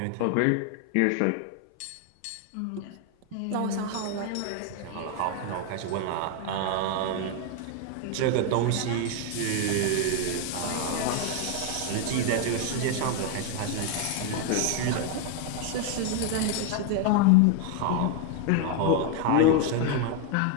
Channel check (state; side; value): different; both; correlation 0.01